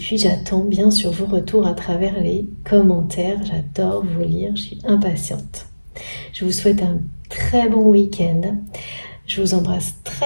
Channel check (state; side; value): inverted; both; correlation -1.00